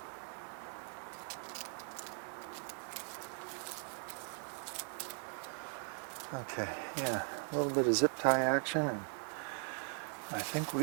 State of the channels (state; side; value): silent; left; 51 dB below the other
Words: Okay, yeah, a little bit of zip tie action, and I think